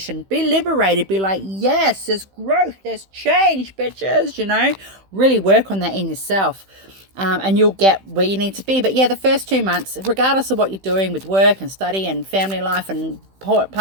Be liberated. Be like, yes, there's growth. There's change, bitches. Really work on that in yourself. And you'll get where you need to be. But yeah, the first 2 months, regardless of what you're doing with work and study and family life and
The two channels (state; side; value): late; left; 15 ms